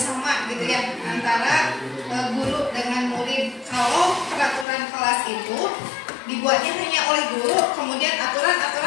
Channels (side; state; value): right; drops out; at 4.7 s